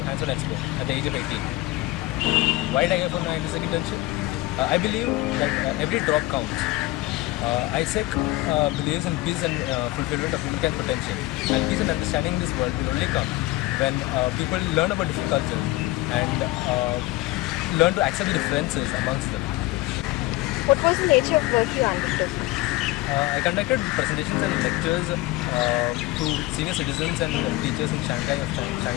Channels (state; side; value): quieter; right; 18.7 dB